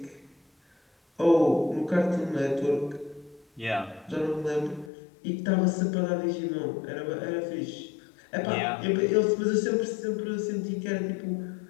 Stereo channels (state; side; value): drops out; right; at 4.9 s